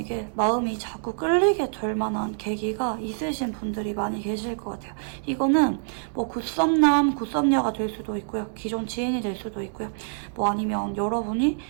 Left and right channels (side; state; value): left; silent; digital silence